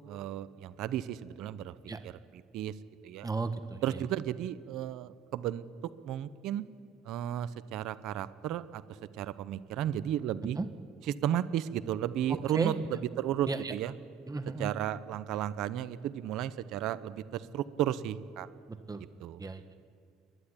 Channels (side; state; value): left; quieter; 9.0 dB